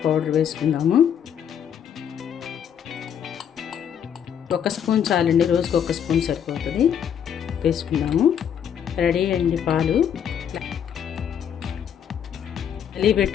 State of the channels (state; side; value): quieter; right; 8.7 dB